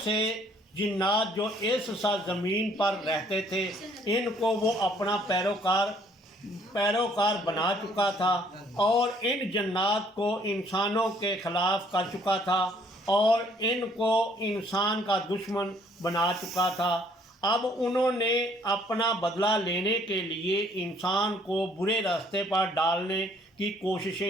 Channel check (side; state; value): both; normal; correlation 0.62